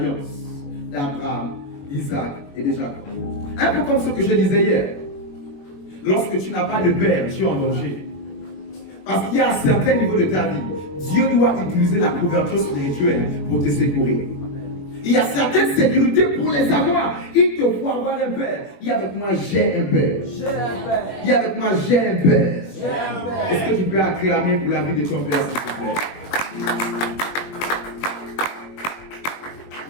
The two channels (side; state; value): right; late; 21 ms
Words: d'Abraham, Isaac et de Jacob. Un peu comme ce que je disais hier. Lorsque tu n'as pas de père, tu es en danger. Parce qu'il y a un certain niveau de ta vie, Dieu doit utiliser la couverture spirituelle pour te secourir. Il y a certaines sécurités pour les avoir. Il te faut avoir un père. Dis avec moi, j'ai un père. Dis avec moi, j'ai un père. Est-ce que tu peux acclamer pour la vie de ton père, s'il te plaît?